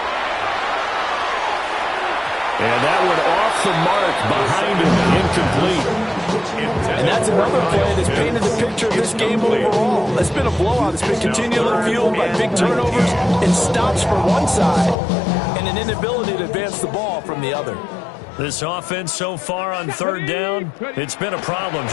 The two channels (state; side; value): drops out; right; at 15.0 s